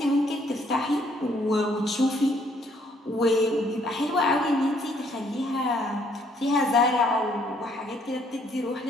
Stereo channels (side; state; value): both; normal; correlation 0.66